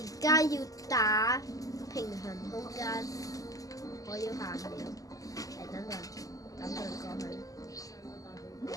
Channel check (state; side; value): late; right; 0.17 ms